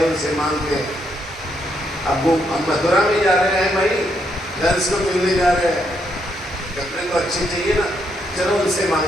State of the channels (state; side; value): normal; both; correlation 0.77